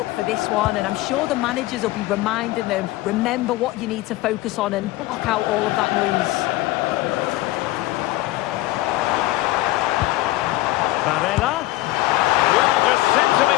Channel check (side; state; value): right; quieter; 17.9 dB